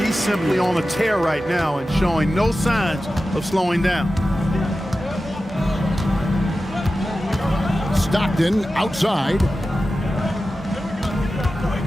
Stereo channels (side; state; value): both; normal; correlation 0.94